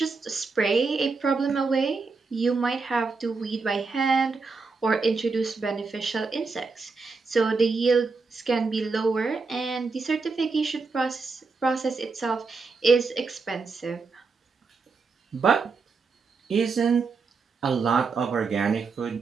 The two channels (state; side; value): quieter; left; 4.4 dB